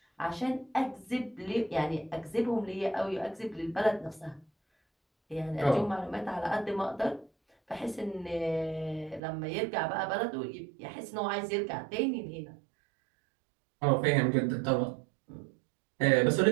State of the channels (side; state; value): left; drops out; at 9.2 s